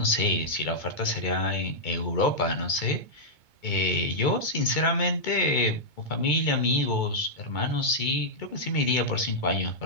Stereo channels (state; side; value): late; right; 2.2 ms